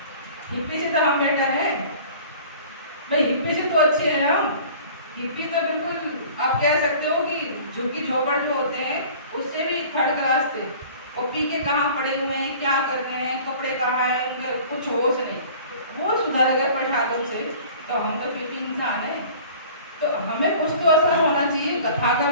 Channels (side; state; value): both; inverted; correlation -0.46